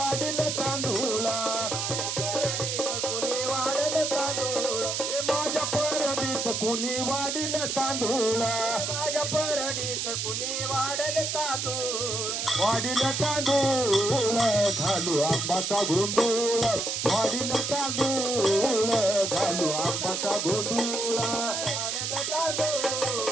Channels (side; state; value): right; noise; hiss, 1 dB below the sound